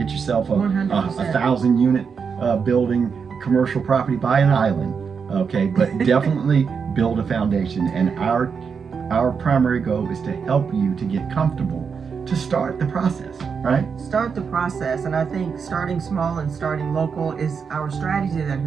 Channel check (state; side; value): quieter; left; 6.0 dB